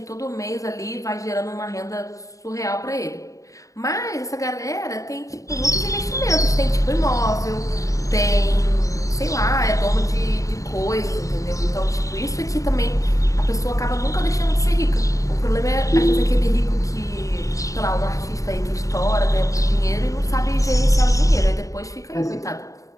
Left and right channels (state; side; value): late; right; 0.16 ms